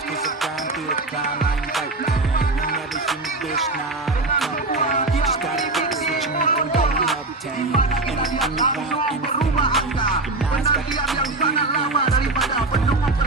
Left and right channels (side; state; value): left; quieter; 3.2 dB